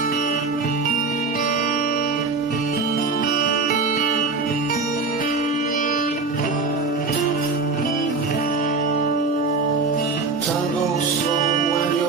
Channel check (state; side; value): quieter; left; 4.1 dB